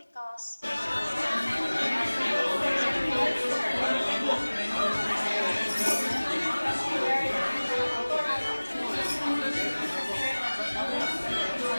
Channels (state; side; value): inverted; both; correlation -1.00